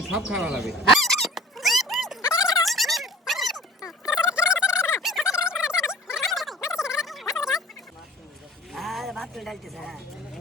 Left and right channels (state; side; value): normal; both; correlation 0.45